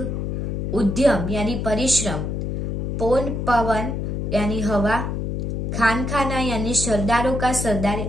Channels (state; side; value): noise; left; hum, 2 dB below the sound